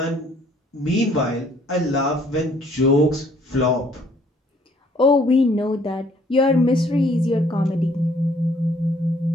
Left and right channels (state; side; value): normal; both; correlation 0.62